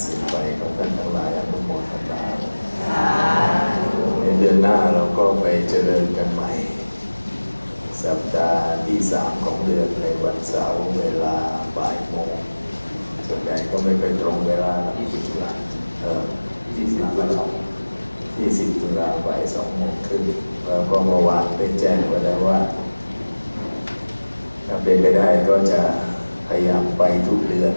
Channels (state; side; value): inverted; both; correlation -1.00